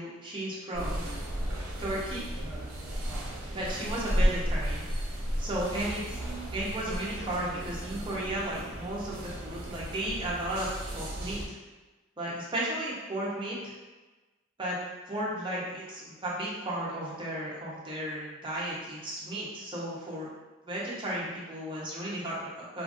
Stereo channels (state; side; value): normal; both; correlation 0.54